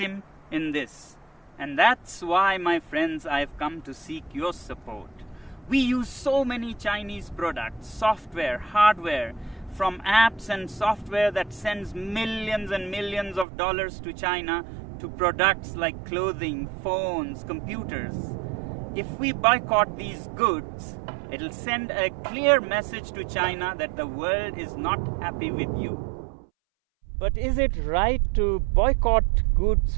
in this. And that's why, my friends, I've come to seek your support. We use so many Chinese products, software, hardware, from apps and software that sends millions and millions of dollars to China to products like clothing, phones, computers. If we boycott these goods, it'll send a clear message to China that the world is not happy with you. But is it right to boycott goods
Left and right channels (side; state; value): left; drops out; at 13.5 s